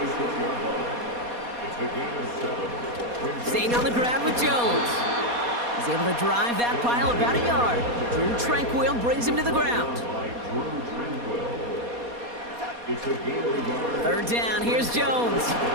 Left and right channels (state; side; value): late; left; 4.2 ms